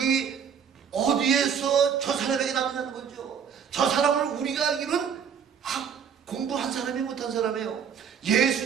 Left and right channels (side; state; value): left; quieter; 7.4 dB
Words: 어디에서 저 사람에게 나느냐는 거죠. 저 사람을 우리가 알기는 공부한 사람이 못한 사람이에요.